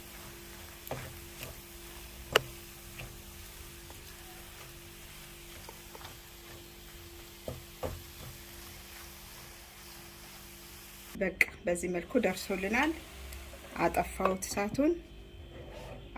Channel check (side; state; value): both; identical; correlation 1.00